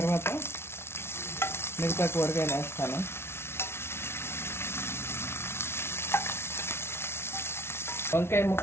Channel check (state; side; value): late; right; 0.12 ms